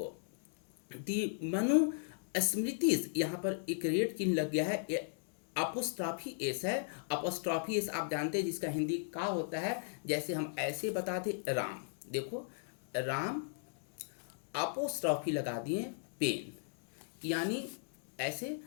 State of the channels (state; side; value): silent; right; digital silence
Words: दी मनु स्मृतिज, यहाँ पर एक रेड चिन्ह लग गया है, ये अपोस्ट्रॉफी एस है। अपोस्ट्रॉफी एस आप जानते हैं जिसका हिंदी का होता है, जैसे हम ऐसे बताते राम, देखो राम अपोस्ट्रॉफी लगा दिए पेन, यानी ऐसे